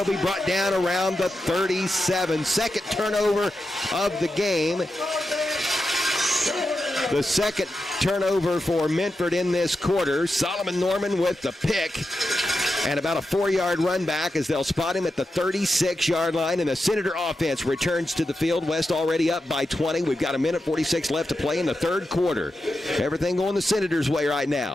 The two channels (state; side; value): normal; both; correlation 0.89